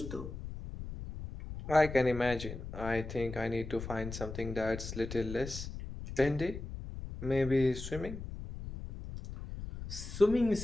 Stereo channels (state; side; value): noise; left; rumble, 9 dB below the sound